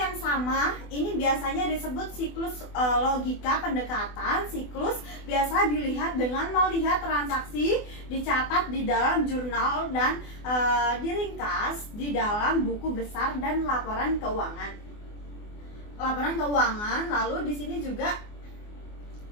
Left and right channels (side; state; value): right; late; 24 ms